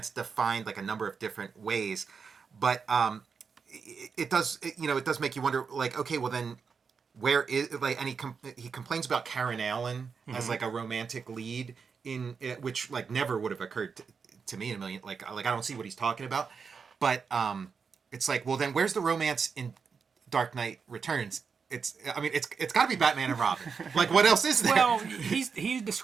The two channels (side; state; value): left; quieter; 5.7 dB